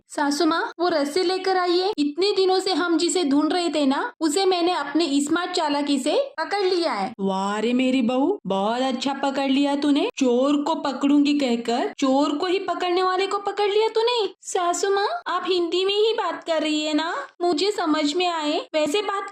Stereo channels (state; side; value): identical; both; correlation 1.00